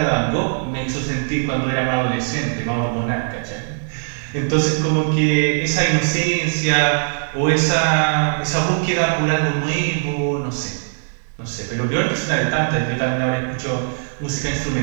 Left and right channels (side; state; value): left; silent; digital silence